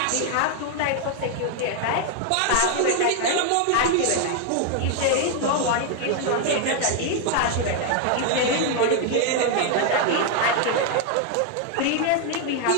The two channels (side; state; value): both; different; correlation 0.00